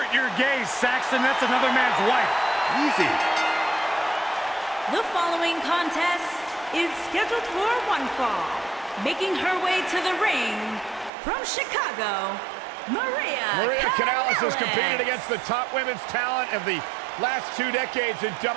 your gaze, Saxton. That's another man's wife. Easy. The following contest is scheduled for one fall. Making her way to the ring from Chicago, Maria Kanellis has competed against the top women's talent of the last 2 decades in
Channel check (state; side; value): drops out; left; at 11.1 s